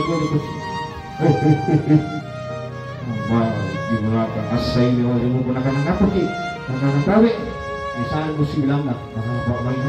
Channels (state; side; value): identical; both; correlation 1.00